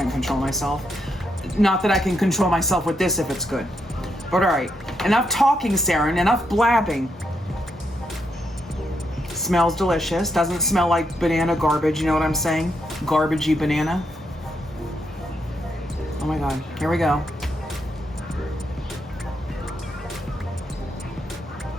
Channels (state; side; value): normal; both; correlation 0.80